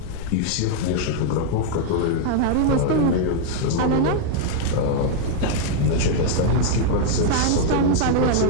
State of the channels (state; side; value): different; both; correlation 0.00